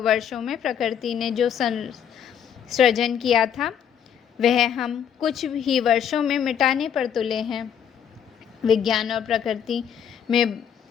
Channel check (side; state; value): right; quieter; 8.5 dB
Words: वर्षों में प्रकृति ने जो सृजन किया था, वह हम कुछ ही वर्षों में मिटाने पर तुले हैं। विज्ञान और प्रकृति में